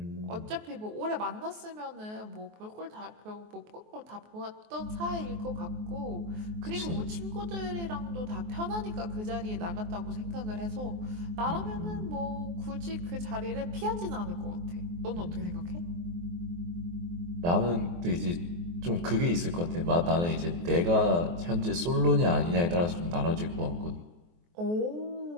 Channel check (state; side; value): late; left; 23 ms